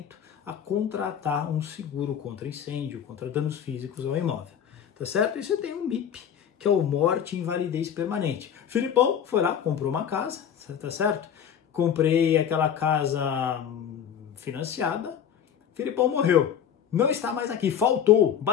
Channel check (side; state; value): right; quieter; 8.7 dB